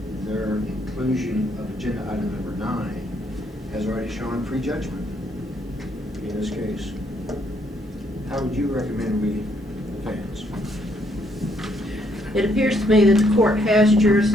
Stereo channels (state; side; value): normal; both; correlation 0.71